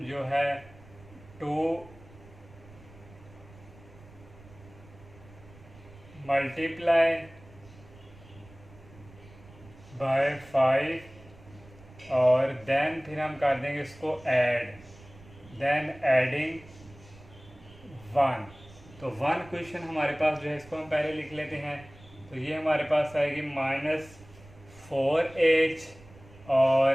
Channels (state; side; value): noise; right; rumble, 22 dB below the sound